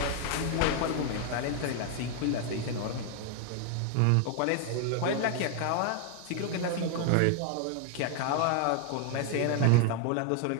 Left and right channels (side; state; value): both; different; correlation 0.00